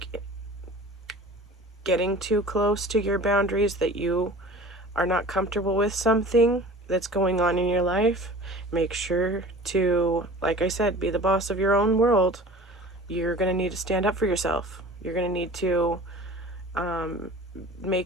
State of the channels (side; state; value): both; normal; correlation 0.41